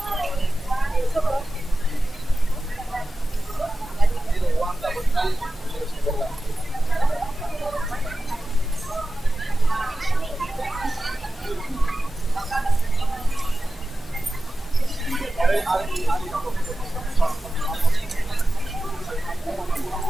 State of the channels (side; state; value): both; normal; correlation 0.94